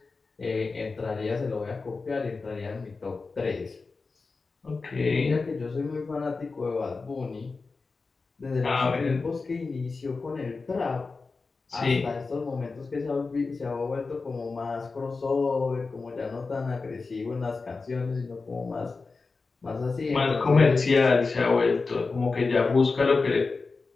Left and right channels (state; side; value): quieter; right; 4.2 dB